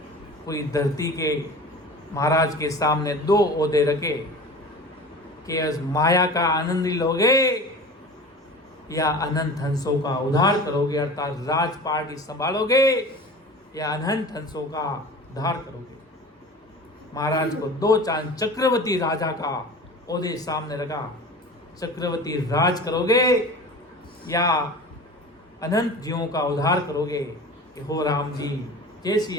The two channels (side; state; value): both; normal; correlation 0.37